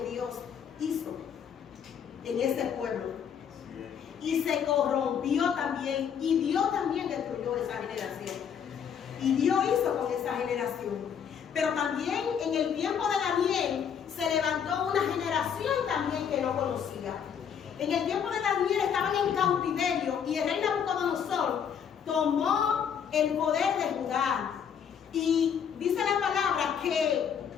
Dios hizo en ese pueblo. Y se corrompió también, y Dios también destruyó esa generación. Y Dios hizo con esa generación. Pero también en el tiempo de Daniel se levantó una generación también que no conocía. En el tiempo de Daniel estaban en cautiverio y el rey Nabucodonosor tomó el poder de Judá. Y dice la palabra que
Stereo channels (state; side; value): quieter; right; 7.8 dB